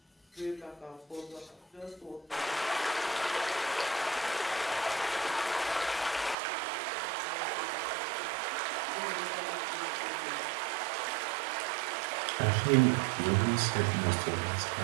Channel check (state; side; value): drops out; left; at 6.4 s